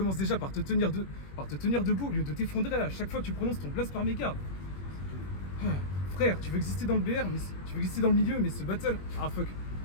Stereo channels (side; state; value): right; late; 21 ms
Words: déjà par te tenir debout au lieu de t'effondrer à chaque fois que tu prononces ton blast par mégarde. Frère, tu veux exister dans le BR, mais tu veux exister dans le milieu, mais ce battle... Ah fuck,